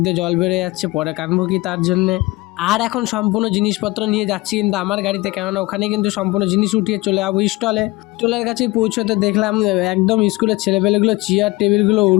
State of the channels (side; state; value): right; quieter; 21.7 dB